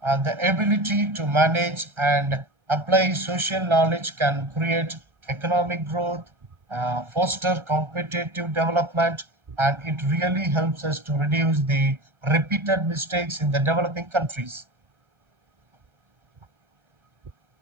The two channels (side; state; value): left; late; 1.4 ms